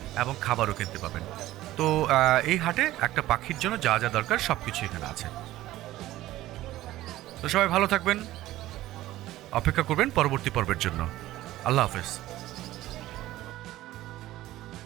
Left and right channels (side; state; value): left; quieter; 15.7 dB